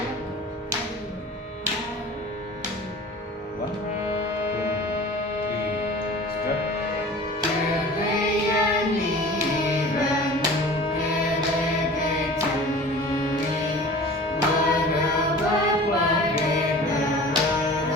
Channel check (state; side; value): normal; both; correlation 0.41